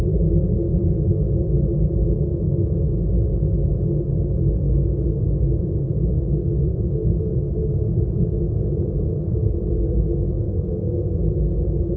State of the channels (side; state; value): both; identical; correlation 1.00